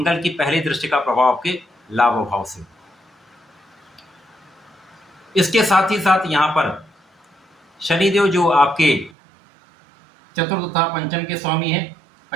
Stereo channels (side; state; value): left; drops out; at 9.2 s